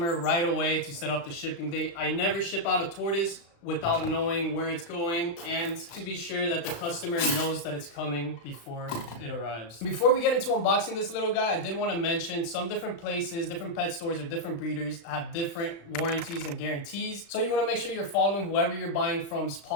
right away to set up the shipping date. I never ship out a tortoise without knowing where it's going and to be sure that the customer knows that it's coming before it arrives. Before we get into unboxing this little guy, I did want to mention some different places, different pet stores or different breeders have different warranties and guarantees. So you want to make sure you're following whoever you're buying from's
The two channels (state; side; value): late; right; 35 ms